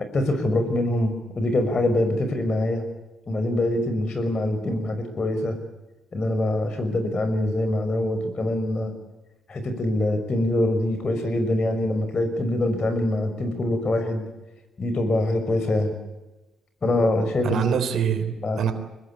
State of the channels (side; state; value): both; normal; correlation 0.81